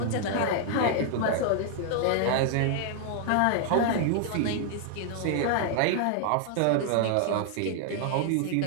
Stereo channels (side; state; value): both; different; correlation 0.00